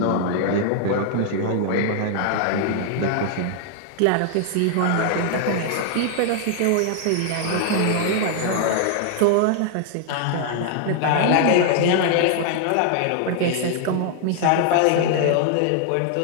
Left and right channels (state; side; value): different; both; correlation 0.00